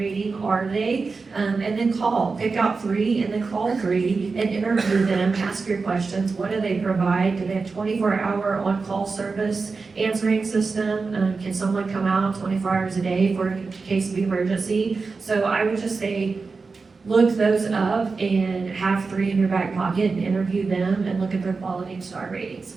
are they? And then pick out 3 and then call 3 and interview them, ask your questions. What do they provide? Do they have 24-hour on-call service answering system? Can someone come out 24 hours a day for a case of emergency? So I would just say, look those up and have 3 in your back pocket and interview them and look at their quality and star ratings.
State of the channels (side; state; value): left; quieter; 4.4 dB